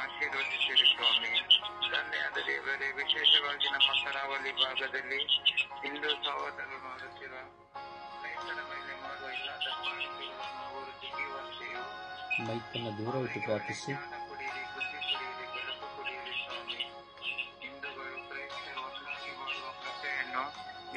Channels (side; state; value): both; identical; correlation 1.00